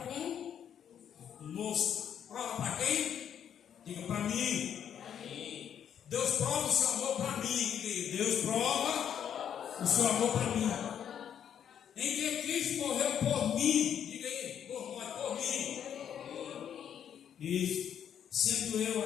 conosco. Prova para quem? Diga para mim. Deus prova o seu amor para mim. Deus prova o seu amor para mim. Em que Cristo morreu por mim. Diga aí, por mim. Isso. Sendo eu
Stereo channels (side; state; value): right; quieter; 9.0 dB